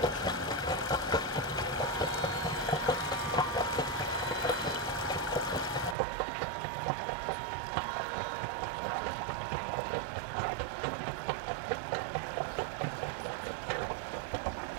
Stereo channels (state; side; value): drops out; left; at 6.0 s